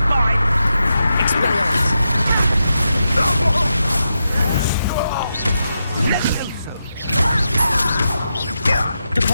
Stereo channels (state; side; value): inverted; both; correlation -0.87